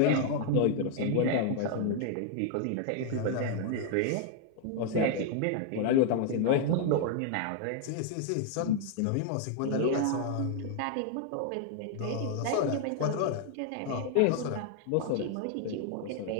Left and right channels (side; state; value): both; different; correlation 0.00